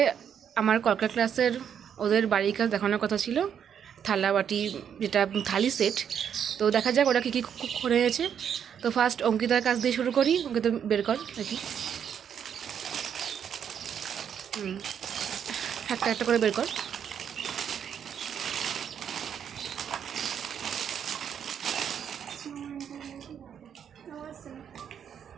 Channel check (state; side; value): quieter; left; 8.3 dB